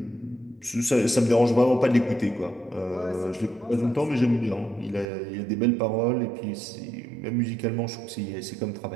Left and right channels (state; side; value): drops out; left; at 5.1 s